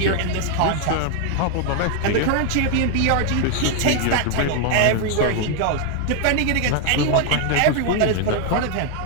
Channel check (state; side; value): different; both; correlation 0.00